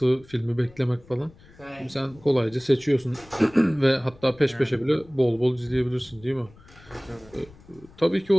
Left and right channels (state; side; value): noise; left; rumble, 24 dB below the sound